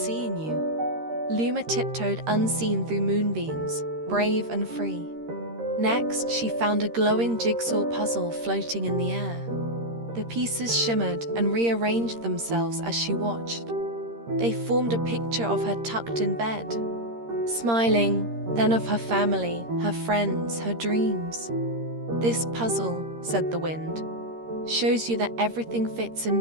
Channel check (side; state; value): left; late; 13 ms